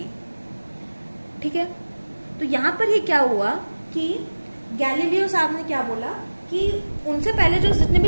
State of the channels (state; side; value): inverted; both; correlation -1.00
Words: ठीक है। तो यहाँ पर ये क्या हुआ कि गैलीलियो साहब ने क्या बोला कि उनसे पहले जो जितने